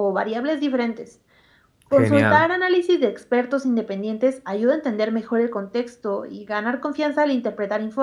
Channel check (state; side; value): identical; both; correlation 1.00